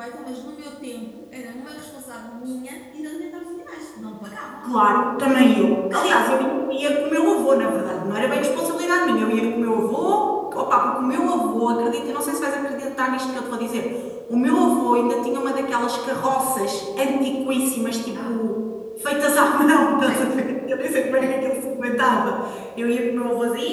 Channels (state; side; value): identical; both; correlation 1.00